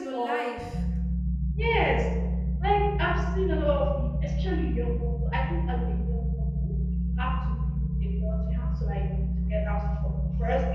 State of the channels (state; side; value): identical; both; correlation 1.00